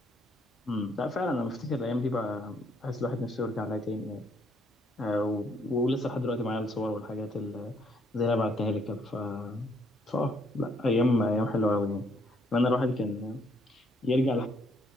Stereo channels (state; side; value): normal; both; correlation 0.69